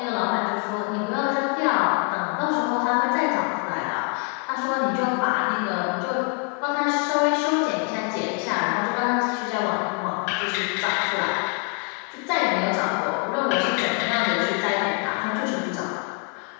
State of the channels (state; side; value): quieter; right; 37.2 dB